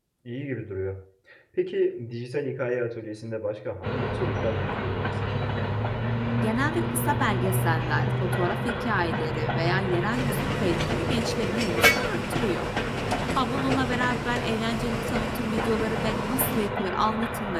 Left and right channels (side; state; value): both; identical; correlation 1.00